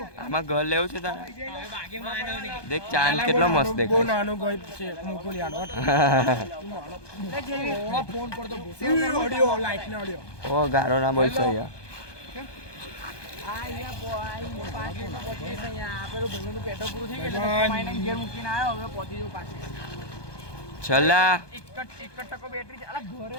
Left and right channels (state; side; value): late; right; 1.2 ms